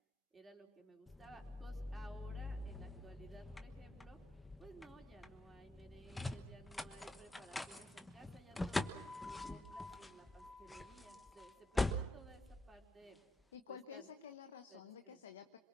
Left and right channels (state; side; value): normal; both; correlation 0.82